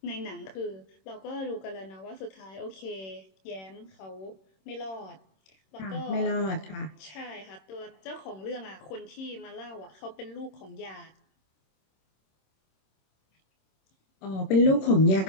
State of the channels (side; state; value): right; late; 26 ms